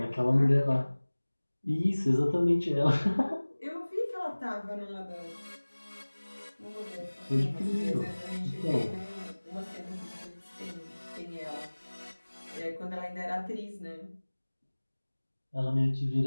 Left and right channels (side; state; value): both; inverted; correlation -1.00